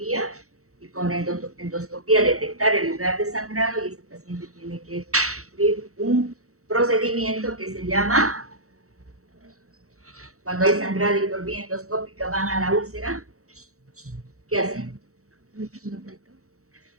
y con la endoscopía detectar el lugar de sangrado y ese paciente tiene que sufrir un procedimiento que se llama, cuando hay sangrado y por vía endoscópica van a la úlcera, ¿qué hacen?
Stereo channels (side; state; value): left; late; 0.64 ms